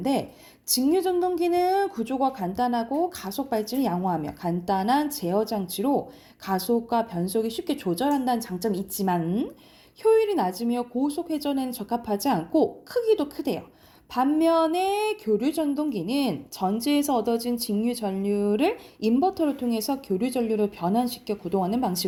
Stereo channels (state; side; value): identical; both; correlation 1.00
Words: 직류 전동기는 구조가 간단하고 가속 발진을 양호하며 간단한 제어 장치로 가속과 변속이 쉽게 조절한다는 장점이 있지만 효율이 낮으며 고속 회전에는 적합하지 않고 크기도 크대요. 반면에 교류 전동기는 전지에서 얻어진 직류 전류를 인버터를 통해서 교류 전류로 변환시켜 구동하는